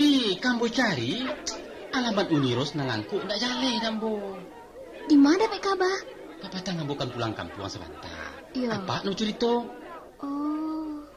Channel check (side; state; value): both; identical; correlation 1.00